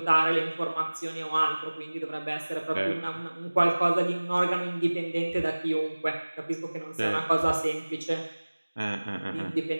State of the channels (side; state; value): both; inverted; correlation -1.00